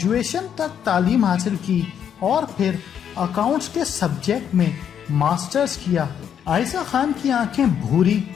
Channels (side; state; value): right; quieter; 8.6 dB